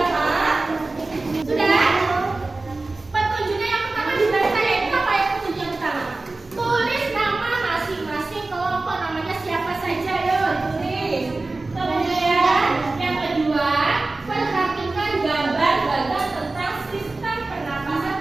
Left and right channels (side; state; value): left; quieter; 3.3 dB